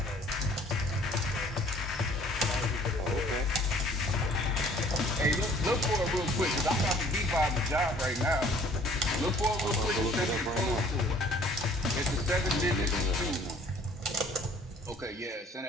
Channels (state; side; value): normal; both; correlation 0.55